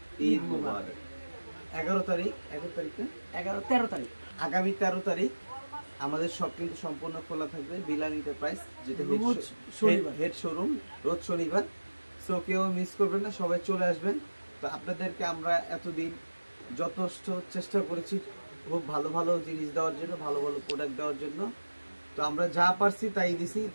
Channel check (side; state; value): both; inverted; correlation -1.00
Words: ঈদ মুবারক। 11 তারিখ আগামী 13 তারিখ আমাদের সব কিন্তু সম্পূর্ণ খোলা থাকবে বিলাল এন্টারপ্রাইজ, যেটা হেড শোরুম, রোজ শনিবার। সো কেউ মিস করবেন না, সবাই চলে আসবেন। তো আপনাদেরকে আমরা এতদিন যথেষ্ট চেষ্টা করেছি খুব ভালো ভালো জিনিস দেওয়ার জন্য, ভালো ভালো প্রোডাক্ট দেওয়ার জন্য। তো আমরা যা পারছি তাই দিছি।